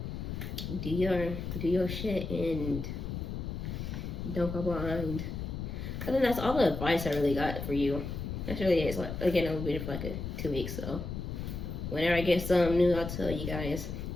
do your shit and don't go behind. I think that's all the advice I really got for you. That's really it. Like, again, I'll be here for like 2 weeks, so whenever I get something new, I'll tell you guys.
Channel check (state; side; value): noise; left; rumble, 5 dB below the sound